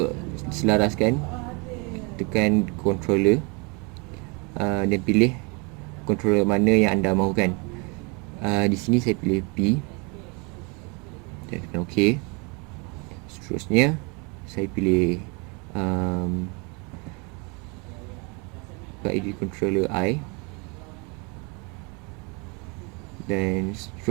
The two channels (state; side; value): quieter; left; 31.3 dB